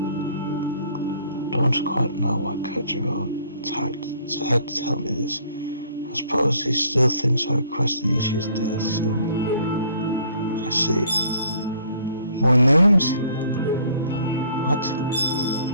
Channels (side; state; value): both; inverted; correlation -0.59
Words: Don't quite know why Kojiro had to tell me this. I suppose he still thinks I requested Ishi's death, so... I see. More names? What?